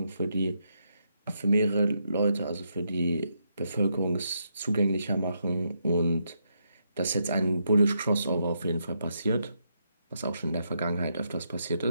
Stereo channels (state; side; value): inverted; both; correlation -0.80